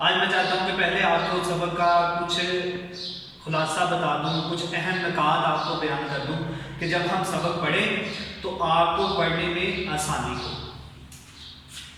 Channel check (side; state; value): both; identical; correlation 1.00